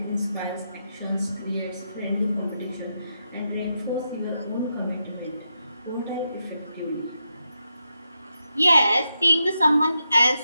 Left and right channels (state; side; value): inverted; both; correlation -0.85